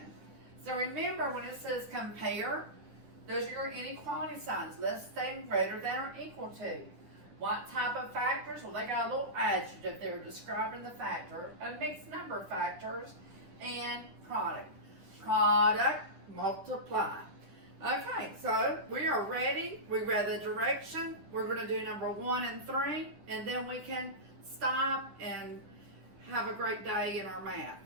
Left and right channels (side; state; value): left; late; 10 ms